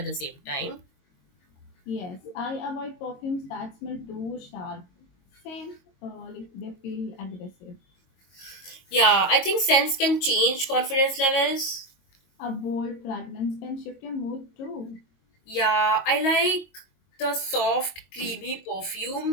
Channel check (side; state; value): right; late; 22 ms